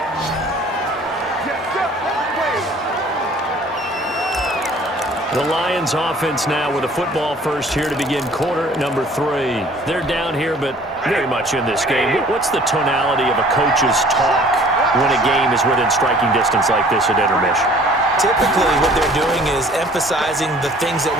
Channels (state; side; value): normal; both; correlation 0.53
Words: The Lions offense now with a football first here to begin quarter number 3. They're down here, but very much in this game. What's the tonality of a coach's talk when a game is within striking distance like this at intermission? Typically, what they're doing is emphasizing the things that